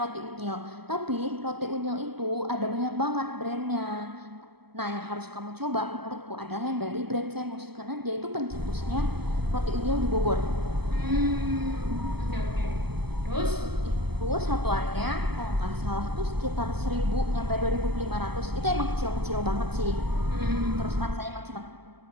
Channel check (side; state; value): left; late; 0.97 ms